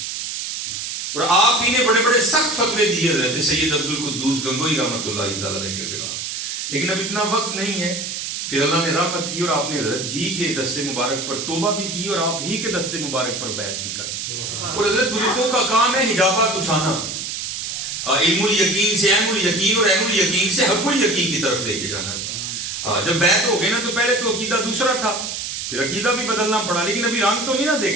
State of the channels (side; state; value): right; noise; hiss, 5 dB below the sound